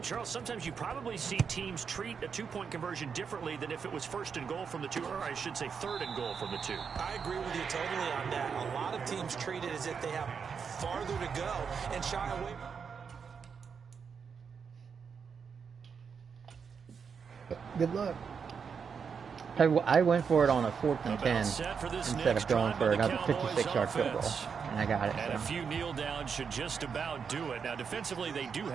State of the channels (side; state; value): left; quieter; 6.3 dB